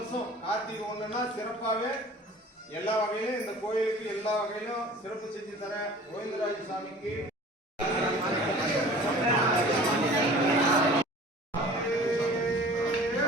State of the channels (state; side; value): normal; both; correlation 0.45